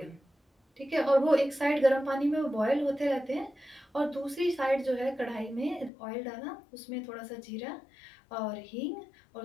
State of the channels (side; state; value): right; drops out; at 5.9 s